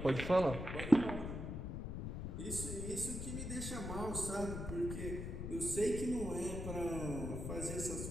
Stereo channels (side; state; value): left; noise; rumble, 5 dB below the sound